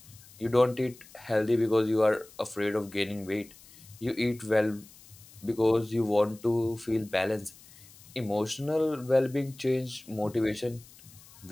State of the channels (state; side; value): noise; left; hiss, 23 dB below the sound